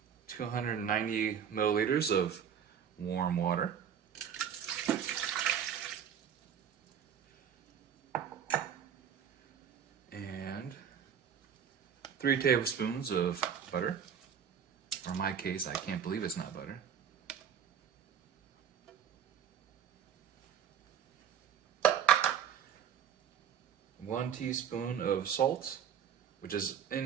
290 milliliters of warm water. And 3 tablespoons of butter, or in my case, I can't believe it's not butter. One teaspoon of salt, which is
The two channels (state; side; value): quieter; left; 8.3 dB